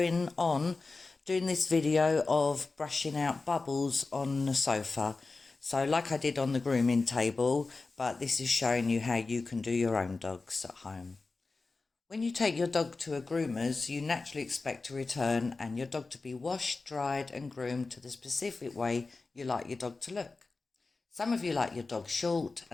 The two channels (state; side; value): quieter; right; 3.8 dB